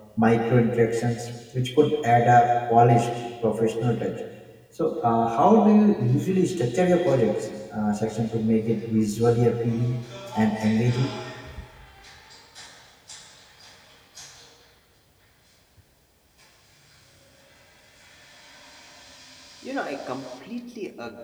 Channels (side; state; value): both; identical; correlation 1.00